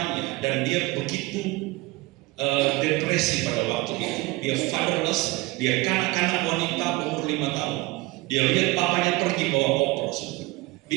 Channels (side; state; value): left; quieter; 21.6 dB